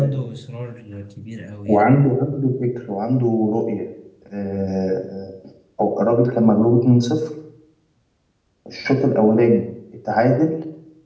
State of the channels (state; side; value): identical; both; correlation 1.00